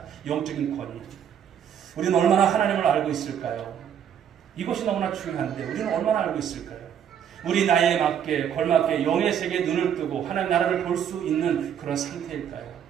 영적인 권위. 우리는 얼마나 하나님을 알고 있을까요? 이것이 너무나 중요한데 우리는 얼마나 알고 있을까요? 우리 나이에 맞게 걸맞게 영의 세계에 눈을 뜨고 하나님 나라를 볼 수 있는 그런 상태일까요?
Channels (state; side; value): quieter; left; 8.9 dB